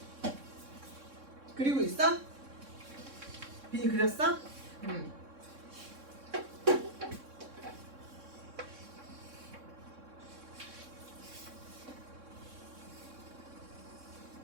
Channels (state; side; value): late; left; 3.6 ms